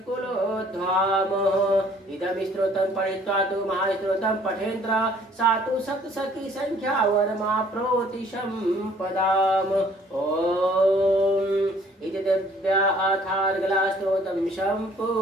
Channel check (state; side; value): normal; both; correlation 0.58